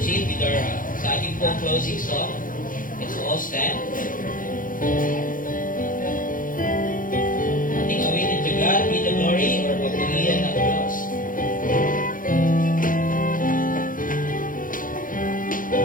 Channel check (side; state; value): right; late; 0.40 ms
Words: with our sa ating pong closing song. Let's all stand. Ating awitin to God be the glory or papurihan ng Diyos.